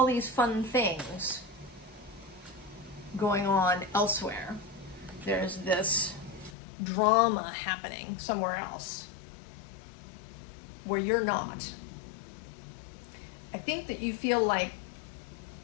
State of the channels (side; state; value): right; drops out; at 6.6 s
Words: these fun things going on elsewhere, there's this drama happening somewhere else where you're not. I think that you feel like